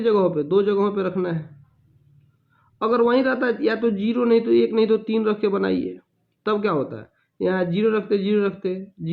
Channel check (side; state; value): both; identical; correlation 1.00